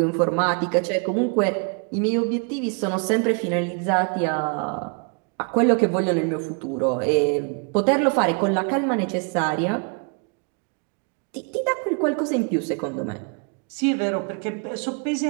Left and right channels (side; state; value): left; quieter; 37.3 dB